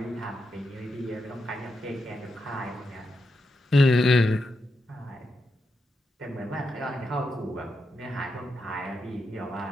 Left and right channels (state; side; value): normal; both; correlation 0.86